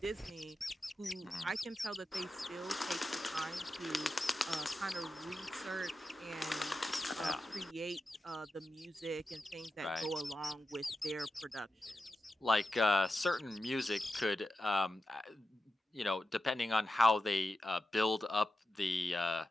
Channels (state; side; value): normal; both; correlation 0.91